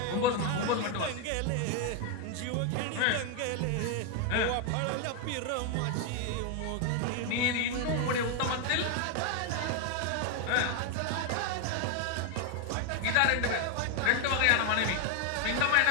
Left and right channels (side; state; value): both; different; correlation 0.01